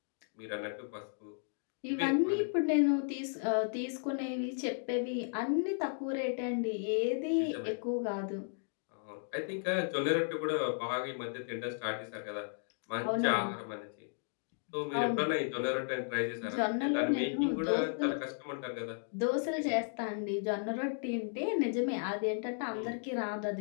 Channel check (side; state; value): right; silent; digital silence